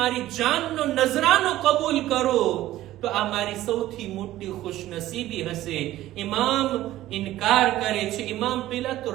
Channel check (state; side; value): quieter; left; 14.8 dB